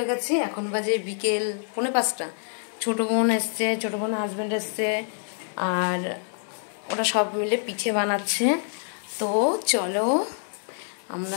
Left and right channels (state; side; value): silent; right; digital silence